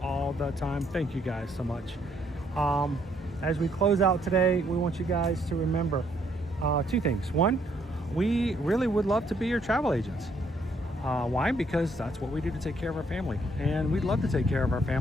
all the time. Thank you guys so much. As we close out today, we want you guys to remember 2 things. 1, we really would love to be your travel agents. Why? Because that's what we do to take care of our family. And we'd love to take care of our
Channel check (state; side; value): normal; both; correlation 0.69